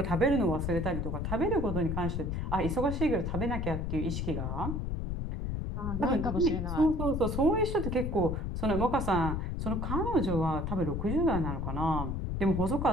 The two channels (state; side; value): noise; left; rumble, 2 dB below the sound